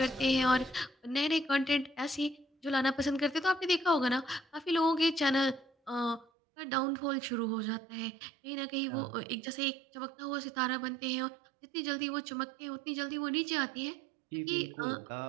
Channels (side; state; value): left; drops out; at 6.2 s